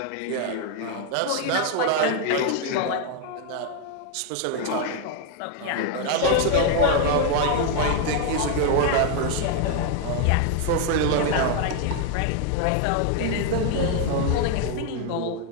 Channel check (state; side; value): different; both; correlation 0.01